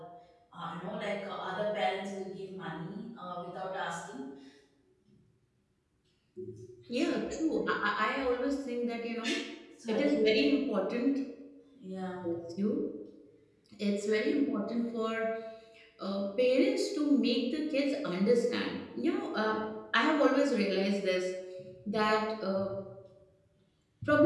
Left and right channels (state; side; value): identical; both; correlation 1.00